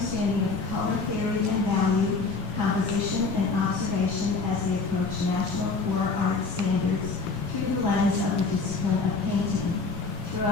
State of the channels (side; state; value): right; quieter; 4.2 dB